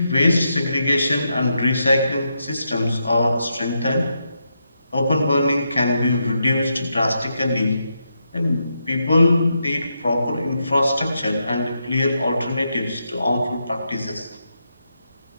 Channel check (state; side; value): inverted; both; correlation -0.83